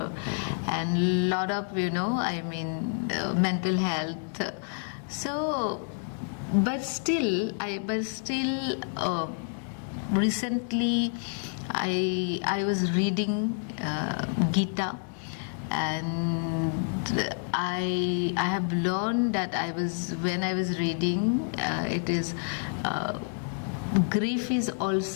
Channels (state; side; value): silent; right; 59 dB below the other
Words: and lot of mental health. So but still recently I was reading Gita, and I have learned that when I was reading it is grief is